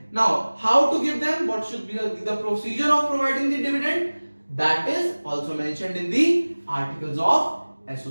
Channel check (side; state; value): both; inverted; correlation -1.00